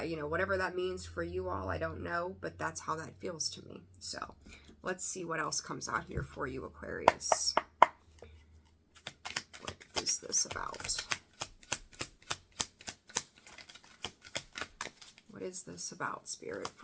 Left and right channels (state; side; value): identical; both; correlation 1.00